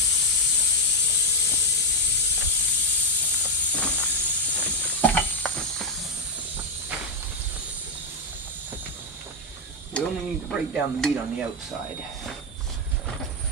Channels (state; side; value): normal; both; correlation 0.03